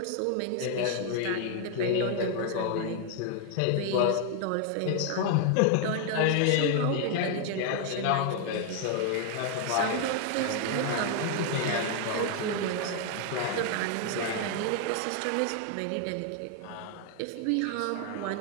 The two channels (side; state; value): both; different; correlation 0.00